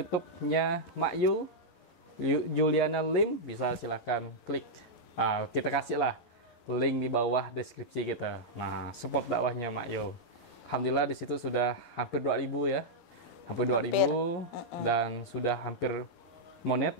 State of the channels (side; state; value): right; late; 11 ms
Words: Mak Yul, Juliana Lim, bisa silahkan klik. Kita kasih lah link di bawah deskripsi kita. Nah, support dakwahnya Mak Yul. Alhamdulillah di situ sudah hampir 2.000 ya. Hampir 2.000 dan sudah hampir monet